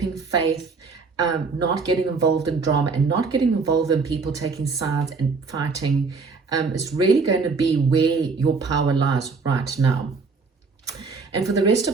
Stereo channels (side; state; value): left; quieter; 4.5 dB